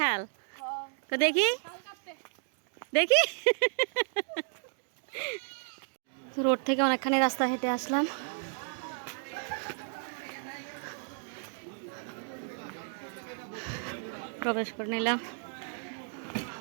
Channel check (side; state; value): left; silent; 56 dB below the other